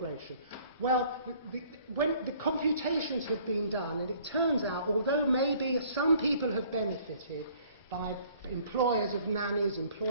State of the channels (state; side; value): inverted; both; correlation -0.57